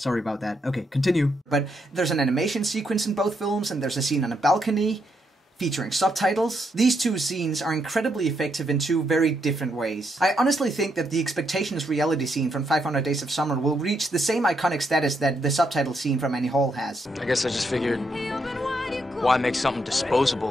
about that. Okay, continue. But there's an animation sequence in both films, and there's a scene on a balcony featuring subtitles. These two scenes are incredibly effective in two very different ways. I honestly think that the Expectations reality scene from 500 Days of Summer will reach the same iconic status that the subtitle scene from Annie Hall has. I guess I just figured, why make something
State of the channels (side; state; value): both; normal; correlation 0.78